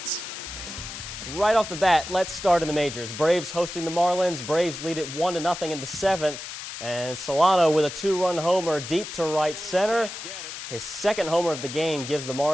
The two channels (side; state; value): left; noise; hiss, 9 dB below the sound